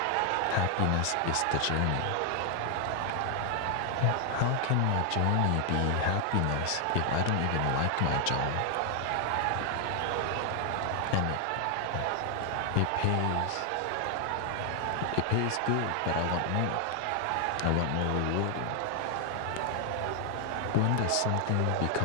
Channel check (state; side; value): different; both; correlation 0.00